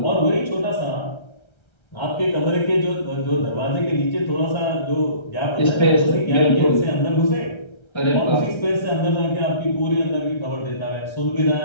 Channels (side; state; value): right; late; 1.3 ms